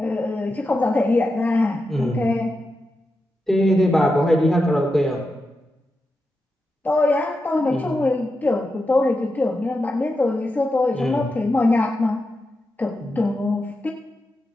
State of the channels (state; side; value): normal; both; correlation 0.89